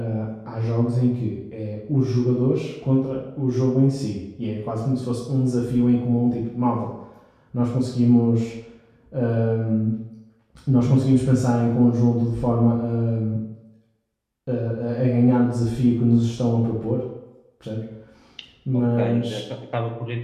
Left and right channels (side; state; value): both; identical; correlation 1.00